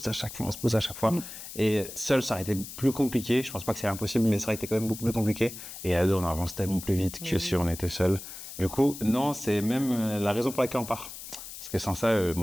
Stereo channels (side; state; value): left; noise; hiss, 12 dB below the sound